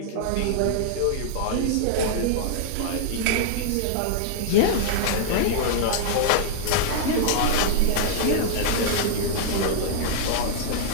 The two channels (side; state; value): both; different; correlation -0.01